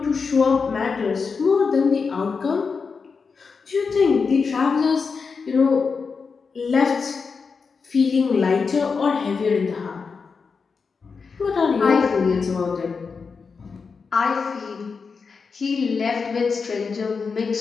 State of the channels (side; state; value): right; quieter; 5.2 dB